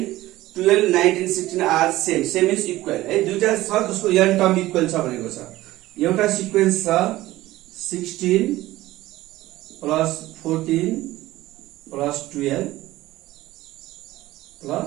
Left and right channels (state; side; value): quieter; left; 16.8 dB